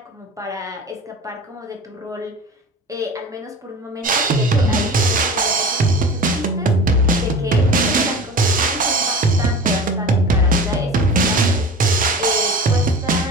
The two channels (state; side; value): normal; both; correlation 0.36